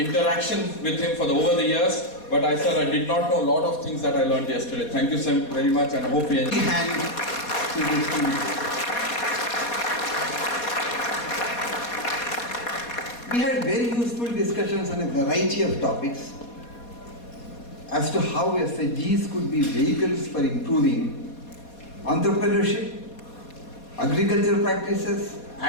with him for over the years. But I did not know a lot of things that I learned yesterday. Thank you so very much, and I hope you enjoy. We had very useful discussions on a variety of topics. as to how SHGs could be vehicles for improving entrepreneurship, agricultural practices,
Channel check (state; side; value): late; right; 4.2 ms